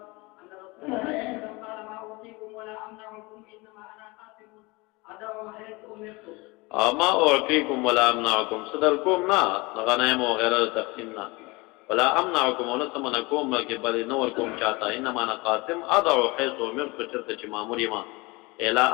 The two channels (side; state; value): right; quieter; 24.8 dB